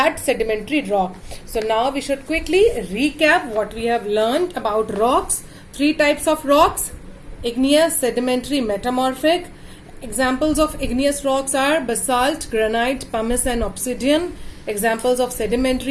sedimentary rock. So now we should quickly recap what we have learned about rocks. Three types of rocks: igneous, sedimentary, metamorphic. Examples of igneous rocks are basalt, granite, pumice and obsidian. Examples of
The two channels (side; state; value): both; identical; correlation 1.00